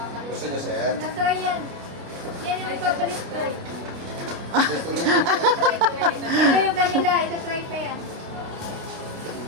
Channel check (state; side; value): late; left; 29 ms